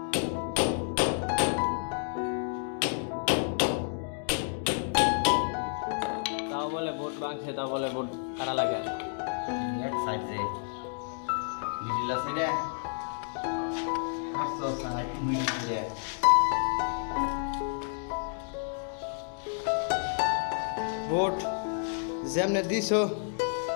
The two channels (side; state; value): right; silent; 58 dB below the other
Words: তাও বলে বোট ভাঙছে, তাও বলে বোট কারা লাগে। এক সাইড রে মিডিলা সাইডে আসো সাইড মিডিলে বোট যেমনে দিছো